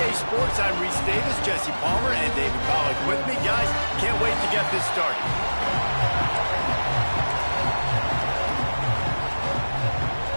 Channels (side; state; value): both; inverted; correlation -1.00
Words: Sports, I'm Reese Davis, Jesse Palmer, and David Pollack with me. Guys, can't wait to get this started.